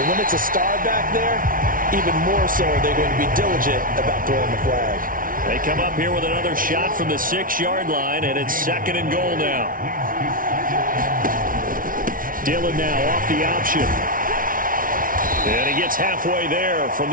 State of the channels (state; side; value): late; left; 0.40 ms